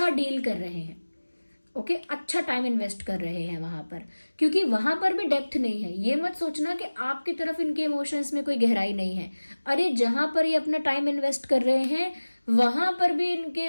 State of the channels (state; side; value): inverted; both; correlation -1.00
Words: डील कर रहे हैं। ओके, अच्छा टाइम इन्वेस्ट कर रहे हैं वहां पर, क्योंकि वहां पर भी डेप्थ नहीं है। ये मत सोचना कि आपकी तरफ इनके इमोशंस में कोई गहराई नहीं है। अरे जहां पर ये अपना टाइम इन्वेस्ट कर रहे हैं वहां पर भी इनके